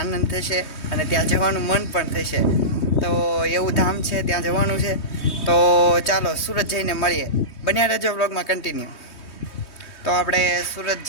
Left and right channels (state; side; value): late; right; 3.2 ms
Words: થશે અને ત્યાં જવાનું મન પણ થશે. તો એવું ધામ છે, ત્યાં જવાનું છે. તો ચાલો સુરત જઈને મળીએ. બન્યા રહેજો વ્લોગમાં કન્ટિન્યુ. તો આપણે સુરત